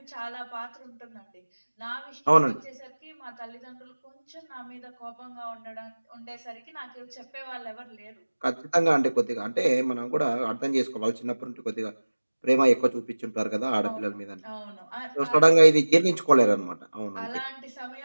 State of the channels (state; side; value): inverted; both; correlation -1.00